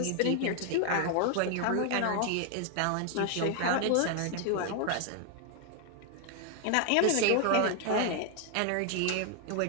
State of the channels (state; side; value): different; both; correlation 0.00